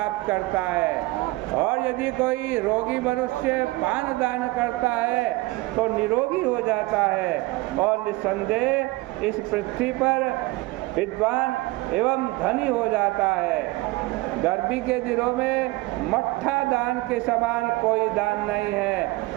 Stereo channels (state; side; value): quieter; left; 21.3 dB